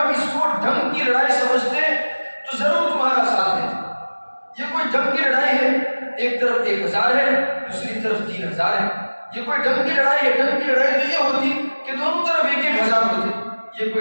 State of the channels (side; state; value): both; inverted; correlation -1.00